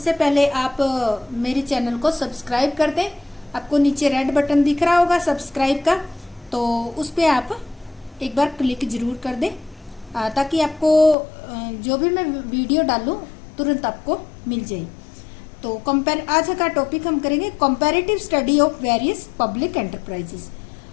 पहले आप मेरे चैनल को सब्सक्राइब कर दें। आपको नीचे रेड बटन दिख रहा होगा सब्सक्राइब का, तो उस पर आप एक बार क्लिक जरूर कर दें ताकि आपको जो भी मैं वीडियो डालूं तुरंत आपको मिल जाए। तो आज का टॉपिक हम करेंगे comparative study of various public enterprises.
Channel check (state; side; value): drops out; right; at 11.2 s